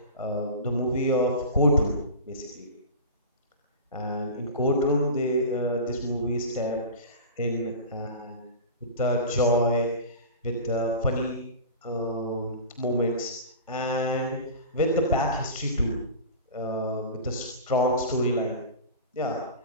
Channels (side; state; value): both; inverted; correlation -0.32